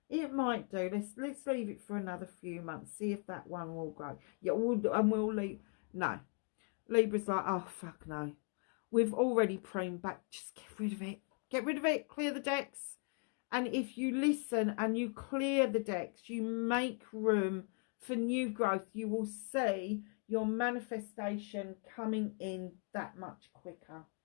It might do. Let's leave it for another few months. See if that one will grow. Yeah, we'll leave. No. Libra's like, oh, fuck no. We've already pruned back. Just get rid of it. Get rid of it. Clear the decks. And if you listen and you clear the decks, you make room for new growth, you will see your manifestation coming in that much quicker.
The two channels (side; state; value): right; quieter; 38.7 dB